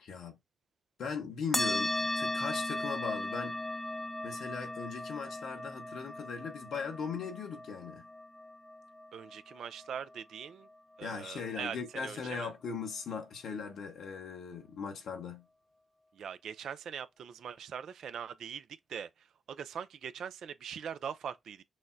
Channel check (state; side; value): normal; both; correlation 0.79